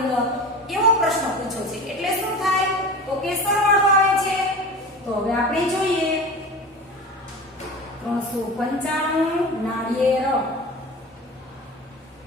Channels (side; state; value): both; normal; correlation 0.33